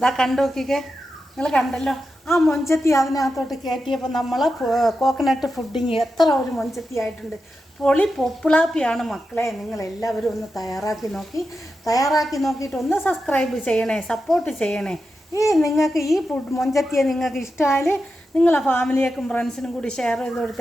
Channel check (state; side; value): normal; both; correlation 0.89